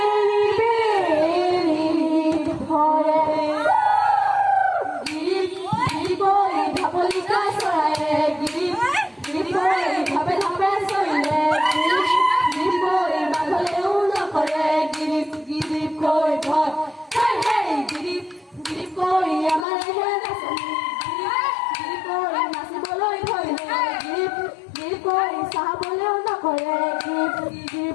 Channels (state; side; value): drops out; right; at 19.7 s